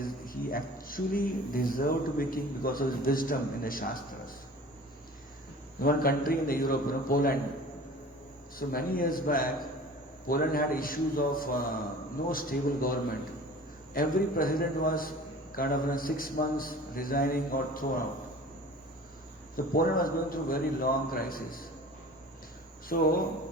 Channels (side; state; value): both; normal; correlation 0.42